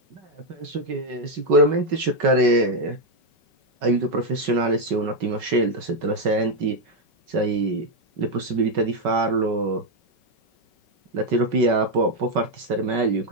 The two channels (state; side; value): late; left; 5.3 ms